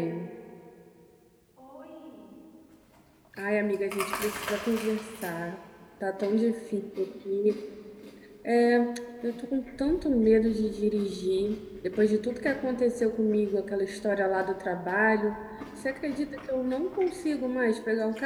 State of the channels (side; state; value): both; identical; correlation 1.00